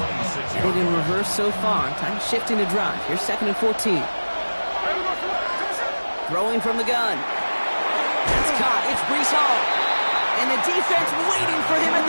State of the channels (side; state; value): both; inverted; correlation -1.00